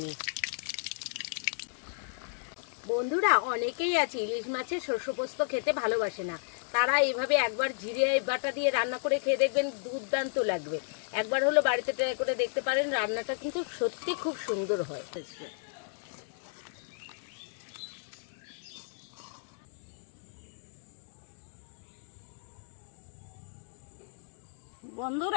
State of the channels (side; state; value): right; silent; digital silence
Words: বন্ধুরা, অনেকেই আছে ইলিশ মাছের শস্য পোস্ত খেতে ভালোবাসে না, তারা এইভাবে একবার জিরে বাটা দিয়ে রান্না করে খেয়ে দেখবেন, দুর্দান্ত লাগবে। একবার হলো বাড়িতে ট্রাই করে দেখতে পারেন, রান্নাটা কিন্তু সত্যি খুব সুন্দর হয়।